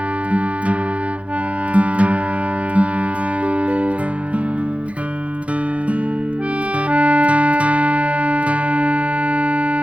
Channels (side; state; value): left; late; 0.064 ms